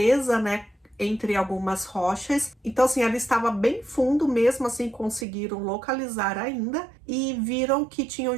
né, entre algumas rochas. Então assim, ela estava bem fundo, mesmo assim conseguiram localizar ainda e viram que tinham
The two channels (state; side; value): drops out; left; at 5.2 s